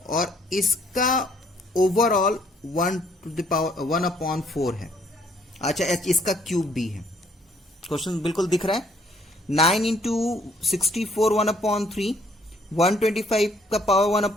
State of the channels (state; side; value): normal; both; correlation 0.64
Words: और इसका ओवरऑल 1 टू द पावर 1/4 है। अच्छा, इसका क्यूब भी है। क्वेश्चन बिल्कुल दिख रहा है। 9 इंटू 64 1/3, 125 का power